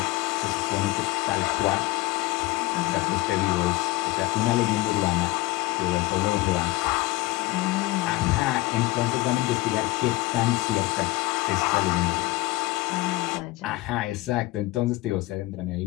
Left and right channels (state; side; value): quieter; right; 20.1 dB